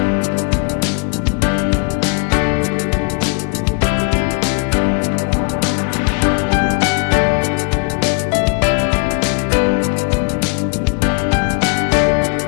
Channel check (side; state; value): right; quieter; 33.7 dB